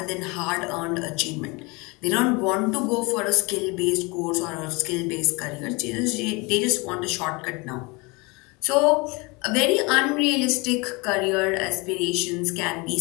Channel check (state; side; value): quieter; right; 26.9 dB